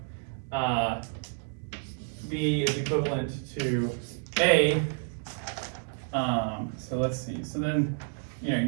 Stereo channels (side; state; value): left; silent; 58 dB below the other